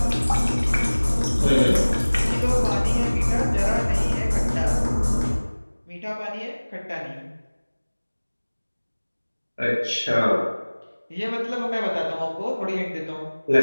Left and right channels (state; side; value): inverted; both; correlation -1.00